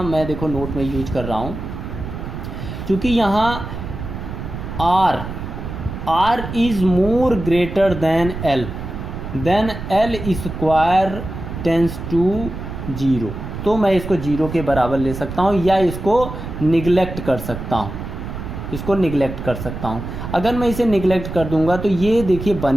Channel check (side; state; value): right; noise; rumble, 8 dB below the sound